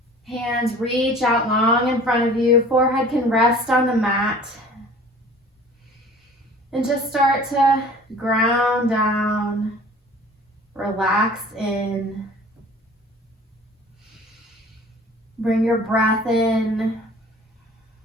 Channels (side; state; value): both; normal; correlation 0.47